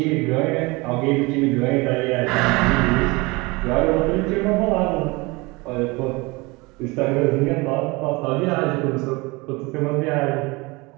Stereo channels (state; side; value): quieter; left; 24.8 dB